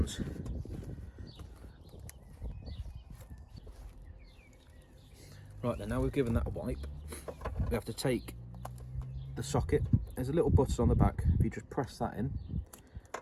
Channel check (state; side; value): identical; both; correlation 1.00